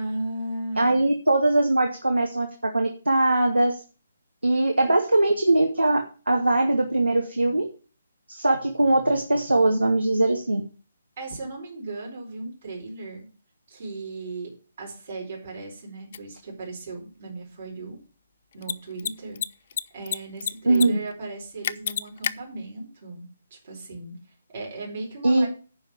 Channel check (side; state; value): both; inverted; correlation -0.92